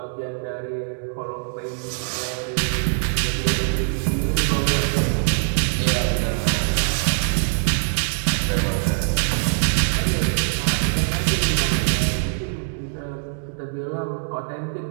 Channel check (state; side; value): silent; left; digital silence